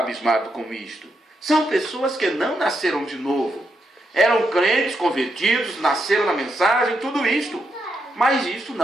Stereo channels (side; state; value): both; normal; correlation 0.82